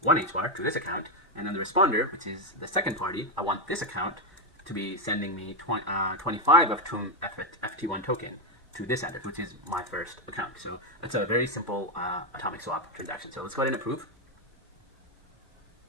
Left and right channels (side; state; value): both; normal; correlation 0.04